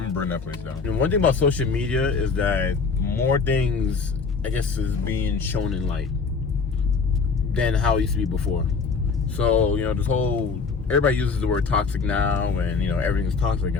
burn that place down. And one thing about social media is that more things, I guess, is being shown in light than how it used to be before. So, you know, this whole, everybody uses the word toxic now, and, you know, everything's toxic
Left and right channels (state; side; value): quieter; right; 4.9 dB